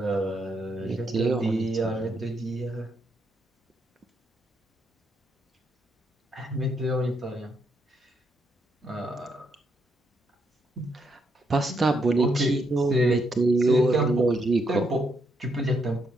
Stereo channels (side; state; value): both; normal; correlation 0.77